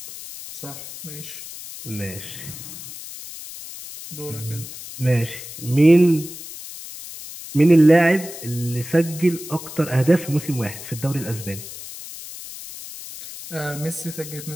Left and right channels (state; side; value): noise; left; hiss, 12 dB below the sound